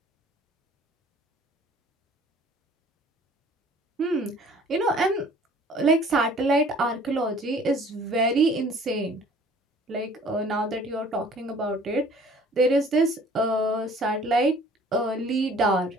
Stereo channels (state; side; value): normal; both; correlation 0.52